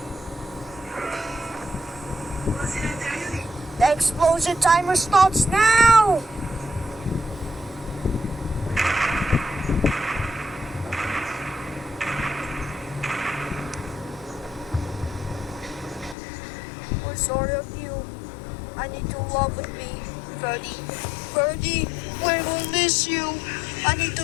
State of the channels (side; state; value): right; drops out; at 16.2 s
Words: The explosion timer starts now! We're sorry of you. I need to love with me, Ferdy. Ferdy, we will miss you. I need to